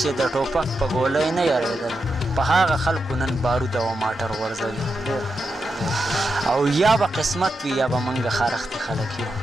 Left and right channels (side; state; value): both; normal; correlation 0.87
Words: یارېدل، په هغه خلکو نن بارود او ماټر غورځوي. او یا به قسمت وي، یا به منګه خارښتې خلک یو.